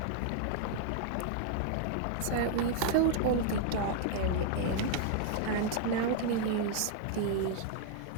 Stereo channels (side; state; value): both; different; correlation 0.00